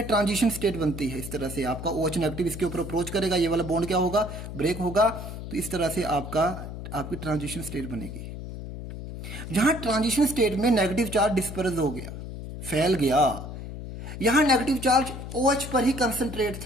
ट्रांजिशन स्टेट बनती है। इस तरह से आपका OH नेगेटिव इसके ऊपर अप्रोच करेगा, ये वाला बॉन्ड क्या होगा, ब्रेक होगा। तो इस तरह से आपकी ट्रांजिशन स्टेट बनेगी। जहां ट्रांजिशन स्टेट में नेगेटिव चार्ज डिस्पर्स हो गया, फैल गया, यहां नेगेटिव चार्ज OH पर ही कंसंट्रेट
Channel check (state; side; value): noise; left; hum, 9 dB below the sound